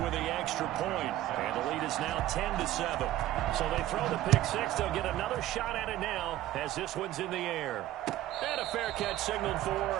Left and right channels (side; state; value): left; quieter; 14.2 dB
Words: the extra point, and the lead is now 10-7. So they throw the pick 6. They'll get another shot at it now as this one's in the air. And a fair catch signaled for